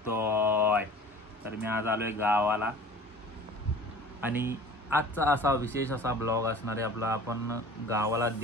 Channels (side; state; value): both; normal; correlation 0.43